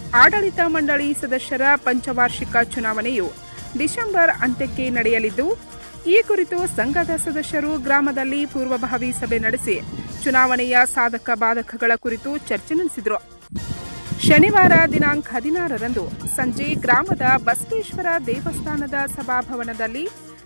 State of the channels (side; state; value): both; inverted; correlation -1.00